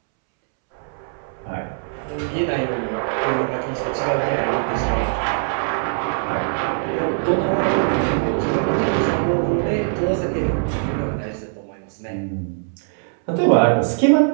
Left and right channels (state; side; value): silent; left; 65 dB below the other